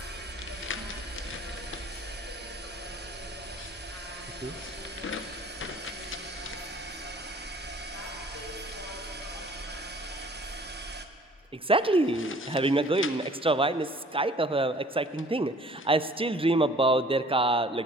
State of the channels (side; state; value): both; normal; correlation 0.52